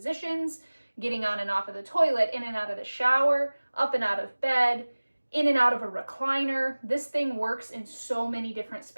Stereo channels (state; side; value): inverted; both; correlation -1.00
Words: getting on and off of the toilet, in and out of the shower, up and out of bed, in and out of a recliner. This thing works in so many different